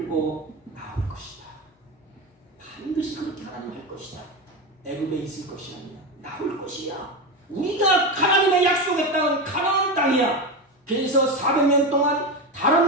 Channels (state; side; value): normal; both; correlation 0.17